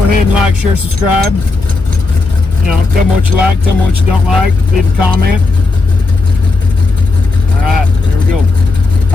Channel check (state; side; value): quieter; right; 3.5 dB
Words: ahead and like, share, subscribe. You know, tell me what you like, tell me what you don't like, leave a comment. All right, there we go.